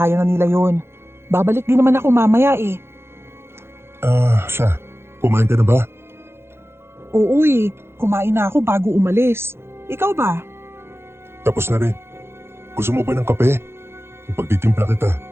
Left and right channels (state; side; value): late; left; 0.12 ms